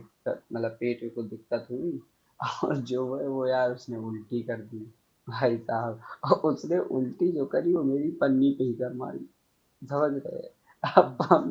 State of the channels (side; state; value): both; identical; correlation 1.00